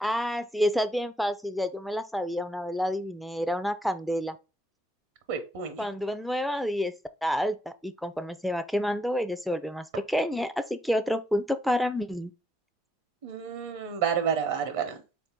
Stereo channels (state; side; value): normal; both; correlation 0.73